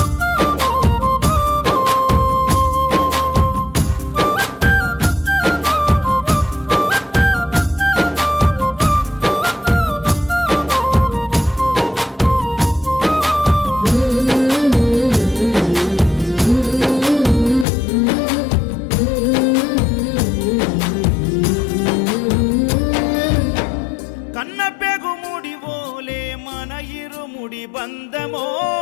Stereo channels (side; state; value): right; drops out; at 17.7 s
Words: కన్న పెగుముడి ఓలే మన ఇరుముడి బంధమో